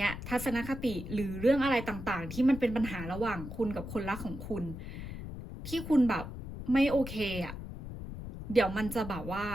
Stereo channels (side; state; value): left; noise; rumble, 9 dB below the sound